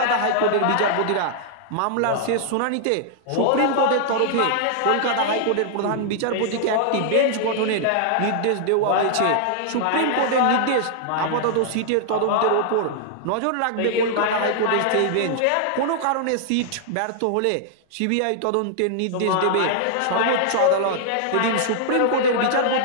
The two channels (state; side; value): different; both; correlation -0.01